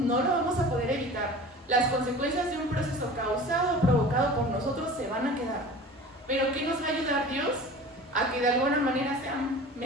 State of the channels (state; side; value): normal; both; correlation 0.40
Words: lo vamos a poder evitar. Las consecuencias de un proceso causado o provocado por nosotros se van a quedar. Pero ¿qué nos va a ayudar Dios? A que de alguna manera sea